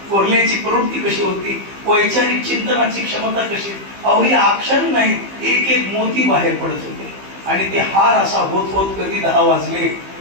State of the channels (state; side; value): late; left; 15 ms